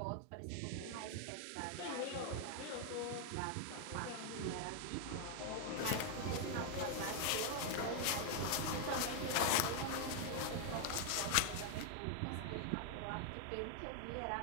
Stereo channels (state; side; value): different; both; correlation 0.00